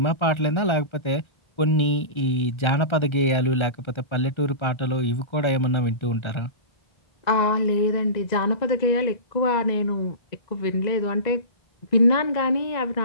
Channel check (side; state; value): right; late; 1.3 ms